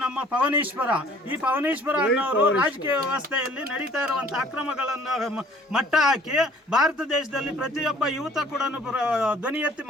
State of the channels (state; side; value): normal; both; correlation 0.55